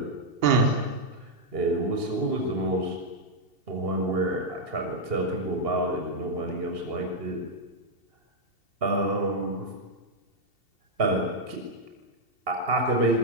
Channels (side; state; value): left; late; 2.7 ms